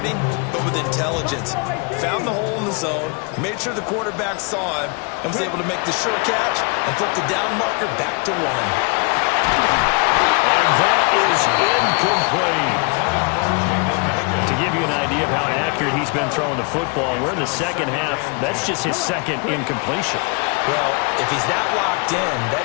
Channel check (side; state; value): right; quieter; 33.3 dB